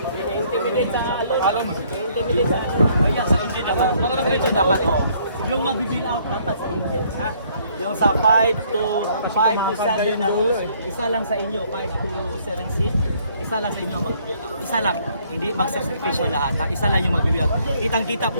Intimidate sa alon. Intimidate sa kaya sa engine dapat. Mga engine dapat. Yung mag-bill out dapat sa engine. Ha? Yung sa 5 to 7 na rules, isa lang sa inyo, 5 to 7 seat, isa lang sa inyo mag-bill out. Isa lang, hindi mag-sacrifice lahat, ha? Isa lang yung mag-bill out. Kitang-kita,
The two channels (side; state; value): both; inverted; correlation -0.64